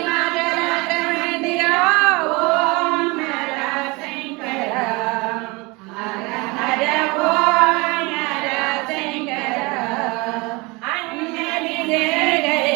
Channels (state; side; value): quieter; left; 25.8 dB